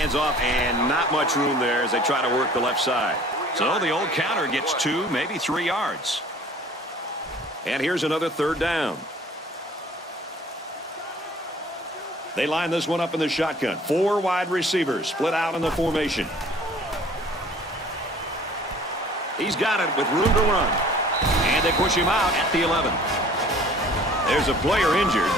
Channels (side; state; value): both; normal; correlation 0.50